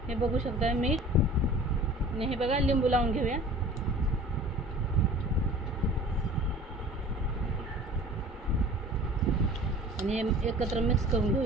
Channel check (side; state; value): both; normal; correlation 0.44